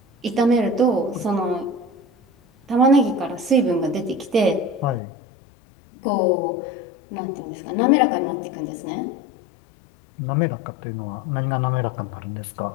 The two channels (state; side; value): drops out; right; at 5.0 s